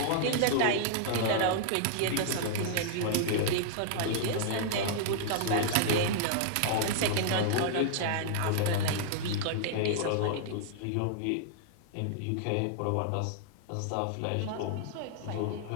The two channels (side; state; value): both; different; correlation -0.01